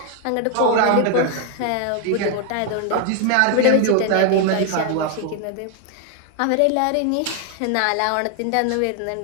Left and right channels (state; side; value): different; both; correlation 0.00